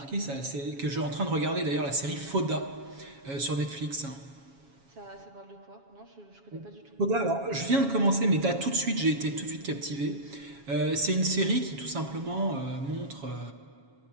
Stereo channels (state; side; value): late; left; 7.2 ms